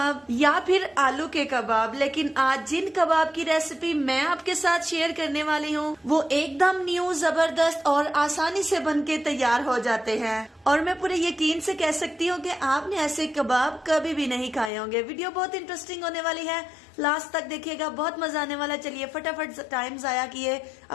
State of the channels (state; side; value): drops out; right; at 14.7 s